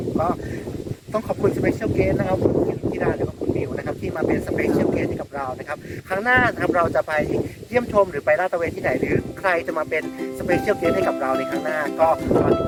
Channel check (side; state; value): both; identical; correlation 1.00